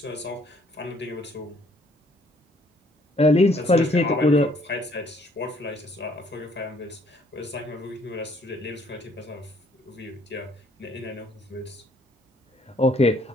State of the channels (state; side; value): normal; both; correlation 0.64